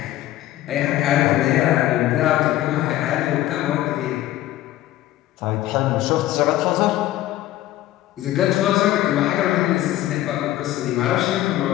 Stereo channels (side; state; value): right; quieter; 14.4 dB